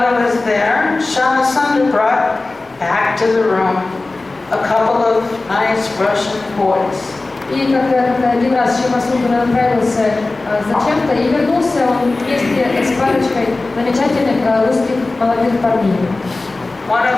he was there, Shama Sundar brought back to the room a couple of nice Russian boys. И когда один раз Шама Сундар отправился зачем-то и вернулся он вместе с парочкой замечательных русских молодых парней. One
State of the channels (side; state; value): right; quieter; 3.3 dB